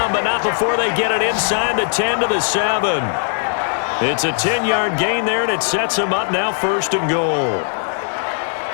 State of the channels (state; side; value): silent; right; 67 dB below the other